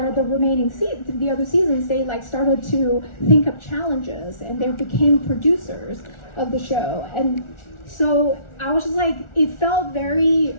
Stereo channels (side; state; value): right; late; 1.4 ms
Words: the remaining the other seasons. They like started to think of challenges, and they became producers of the show. And so I was just like, it felt very,